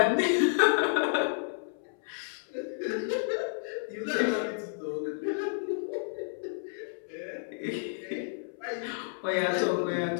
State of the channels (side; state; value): right; silent; 57 dB below the other